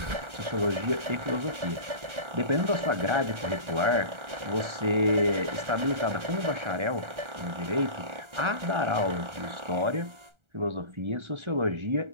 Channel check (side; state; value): left; late; 1.3 ms